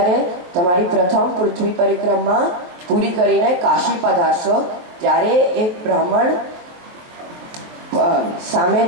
તમારી પ્રથમ પૃથ્વી પરિક્રમા પૂરી કરીને કાશી પધારશો ત્યારે એક બ્રાહ્મણ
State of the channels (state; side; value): late; left; 23 ms